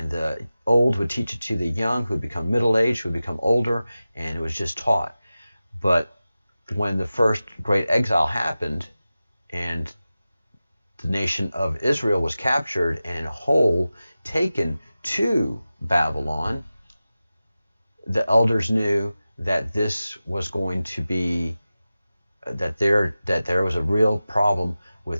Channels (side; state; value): both; inverted; correlation -0.95